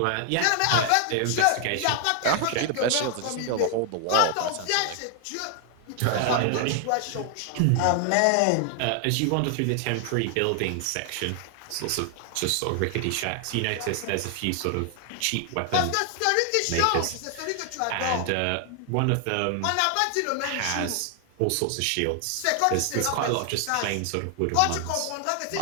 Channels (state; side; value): different; both; correlation 0.00